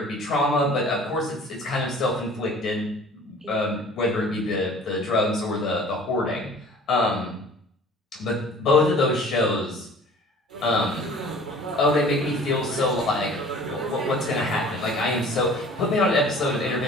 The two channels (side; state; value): both; normal; correlation 0.47